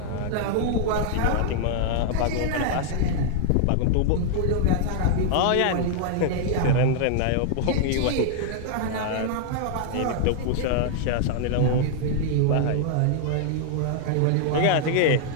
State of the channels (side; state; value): both; different; correlation -0.01